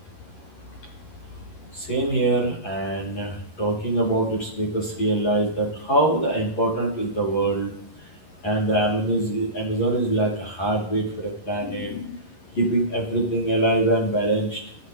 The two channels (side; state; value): right; late; 11 ms